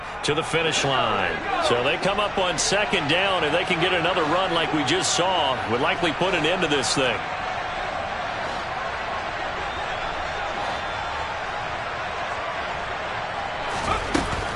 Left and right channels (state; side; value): identical; both; correlation 1.00